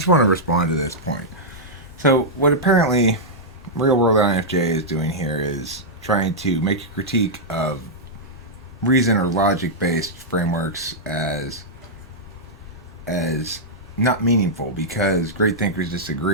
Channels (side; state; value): both; normal; correlation -0.08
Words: want to respond to this point. So, what apparently Real World INFJ is doing here is trying to make a critique of reason or logic-based frameworks as not meaningful because great thinkers